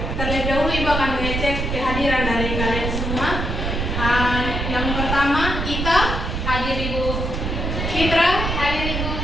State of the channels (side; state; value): right; noise; rumble, 2 dB below the sound